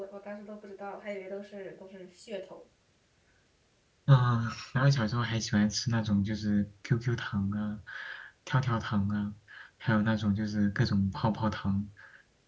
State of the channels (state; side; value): identical; both; correlation 1.00